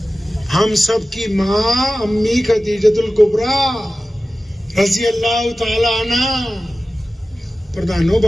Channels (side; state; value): both; normal; correlation 0.95